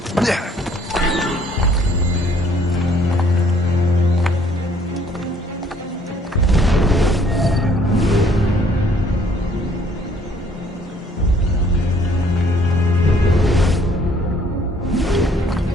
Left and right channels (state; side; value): normal; both; correlation 0.61